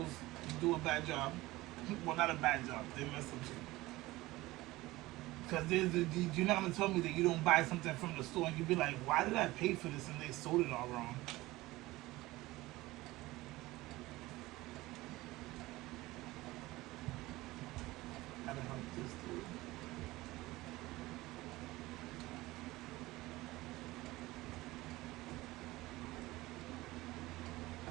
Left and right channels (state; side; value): quieter; left; 19.1 dB